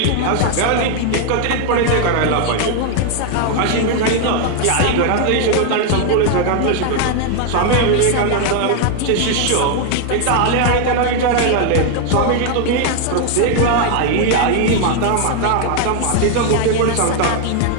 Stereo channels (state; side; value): different; both; correlation 0.00